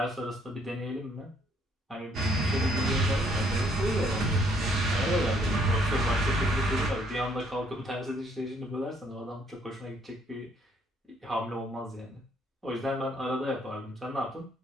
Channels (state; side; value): normal; both; correlation 0.66